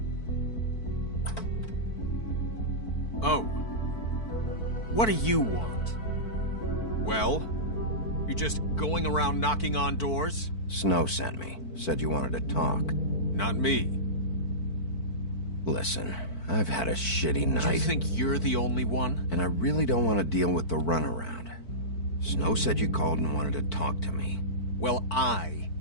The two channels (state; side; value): late; right; 4.5 ms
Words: Oh. What do you want? Well? You're just going around knocking on doors? Snow sent me. Said you wanted to talk. Not me. Listen, I've had a shitty night. Do you think you're the only one? And I really don't want to deal with the runaround. Snow said you called and wanted to talk to me. Well, I